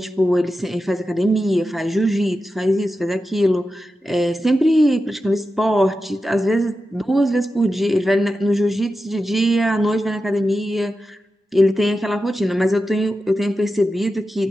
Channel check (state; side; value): normal; both; correlation 0.91